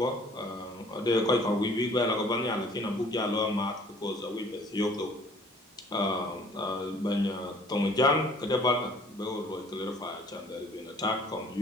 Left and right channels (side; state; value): both; normal; correlation 0.54